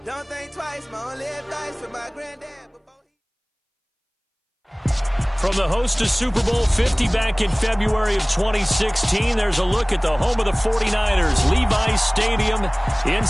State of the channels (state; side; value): identical; both; correlation 1.00